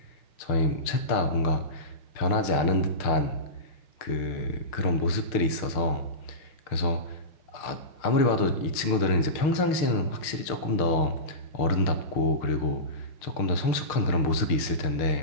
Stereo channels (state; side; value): late; right; 6.5 ms